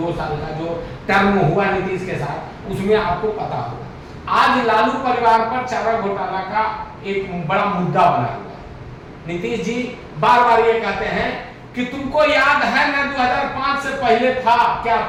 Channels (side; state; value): both; identical; correlation 1.00